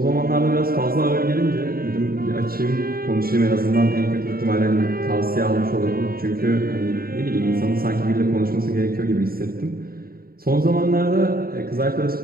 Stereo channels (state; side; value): late; left; 0.43 ms